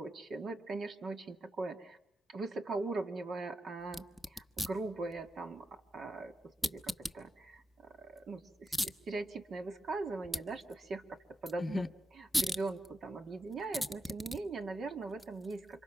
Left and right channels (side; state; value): both; normal; correlation 0.88